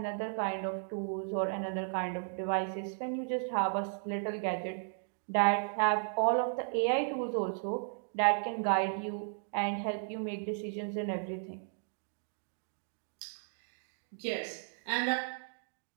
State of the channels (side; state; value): left; silent; digital silence